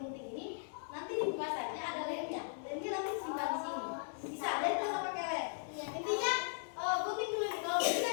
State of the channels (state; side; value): silent; right; 52 dB below the other